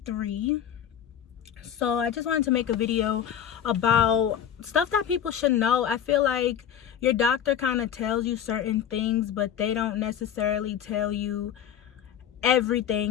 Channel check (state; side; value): quieter; right; 9.3 dB